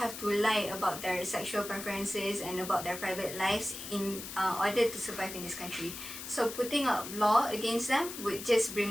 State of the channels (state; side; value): noise; left; hiss, 9 dB below the sound